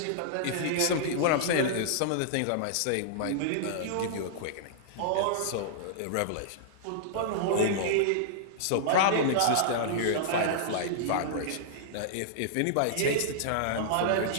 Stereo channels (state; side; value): different; both; correlation -0.02